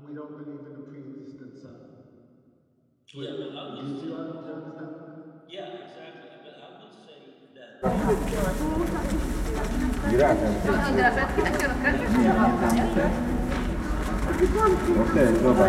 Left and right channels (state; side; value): identical; both; correlation 1.00